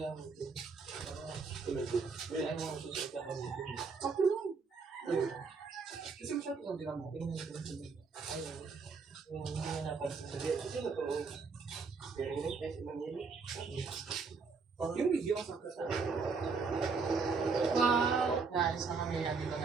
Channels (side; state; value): left; quieter; 4.8 dB